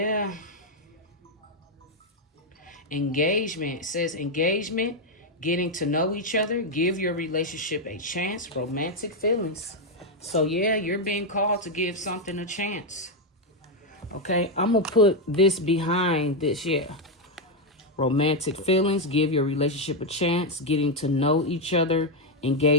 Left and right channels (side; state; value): both; normal; correlation 0.02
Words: Engagement. It says engagement, getting to know each other, give your relationship a chance, romantic feelings. So yeah, you're being called to give something a chance. Okay, I'm going to put this behind this, yeah. Romantic feelings, give your relationship a chance, getting to know each other,